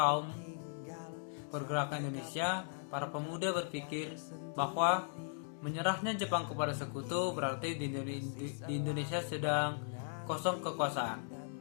pergerakan Indonesia, para pemuda berpikir bahwa menyerahnya Jepang kepada sekutu berarti di Indonesia sedang kosong kekuasaan.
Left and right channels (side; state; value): right; silent; digital silence